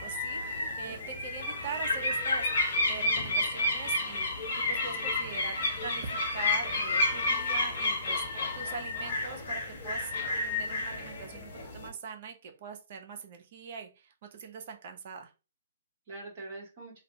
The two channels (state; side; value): inverted; both; correlation -0.56